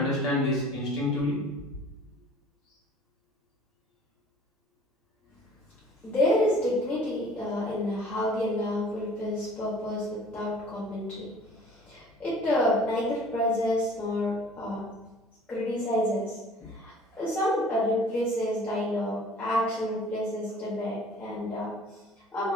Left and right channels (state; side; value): normal; both; correlation 0.50